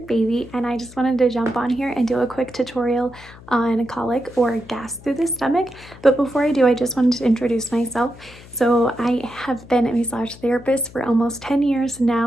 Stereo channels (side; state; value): left; noise; hum, 20 dB below the sound